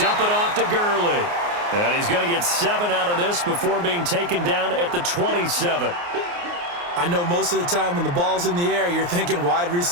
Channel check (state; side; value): late; left; 29 ms